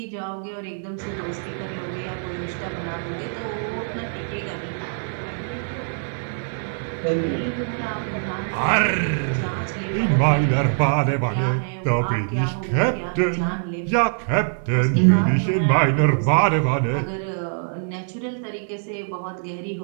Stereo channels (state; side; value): silent; left; 57 dB below the other